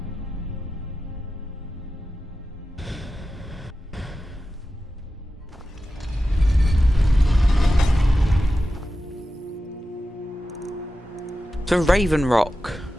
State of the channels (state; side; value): normal; both; correlation 0.93